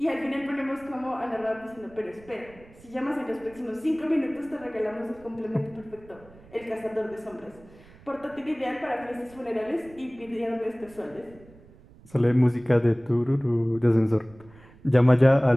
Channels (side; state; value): right; noise; rumble, 24 dB below the sound